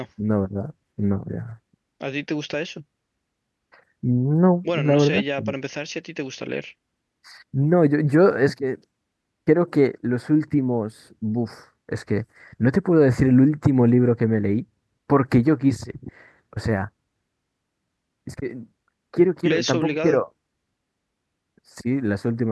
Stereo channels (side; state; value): both; identical; correlation 1.00